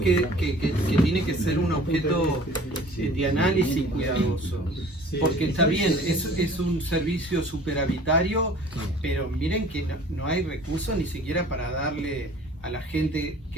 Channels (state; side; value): normal; both; correlation 0.48